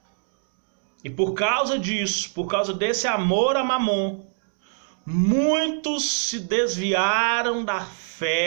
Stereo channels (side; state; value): left; silent; digital silence